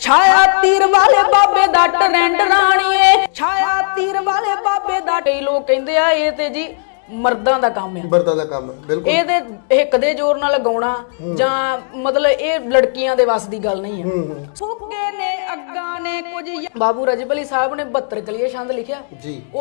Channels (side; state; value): right; silent; digital silence